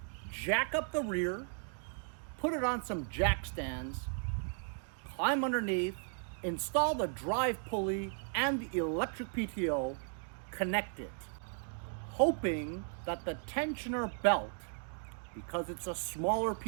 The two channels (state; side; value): silent; left; 54 dB below the other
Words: jack up the rear, put it on some jack stands, climb underneath, install the drive pulley and the electric PTO, connect it, hoping that the tensioner belt, because it's a smaller